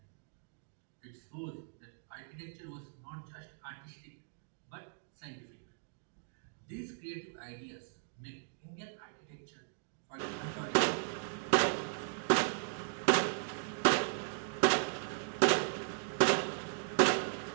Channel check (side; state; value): left; silent; digital silence